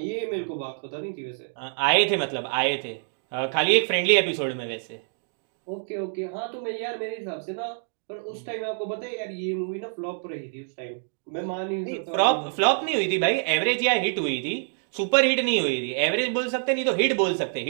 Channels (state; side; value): silent; left; digital silence